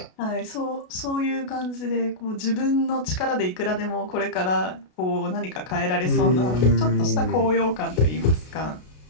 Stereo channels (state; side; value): late; right; 33 ms